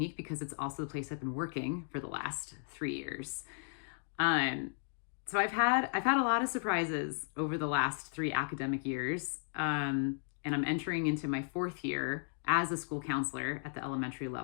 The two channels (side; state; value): right; silent; digital silence